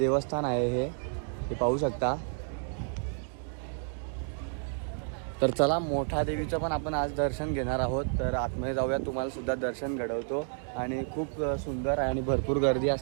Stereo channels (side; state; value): left; silent; 57 dB below the other